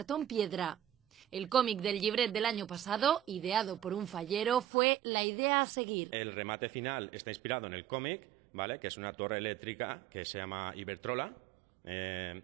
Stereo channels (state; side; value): drops out; left; at 4.7 s